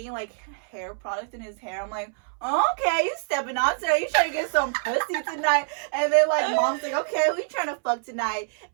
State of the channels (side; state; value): left; silent; 61 dB below the other